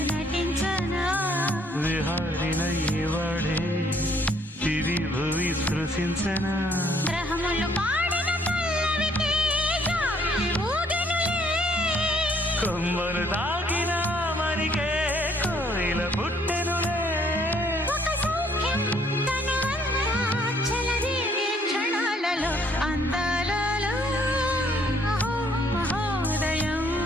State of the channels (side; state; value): both; normal; correlation 0.64